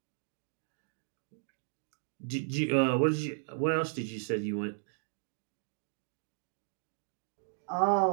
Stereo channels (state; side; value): silent; left; digital silence